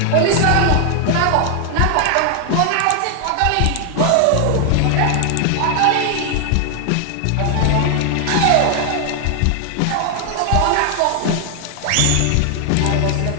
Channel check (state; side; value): different; both; correlation 0.00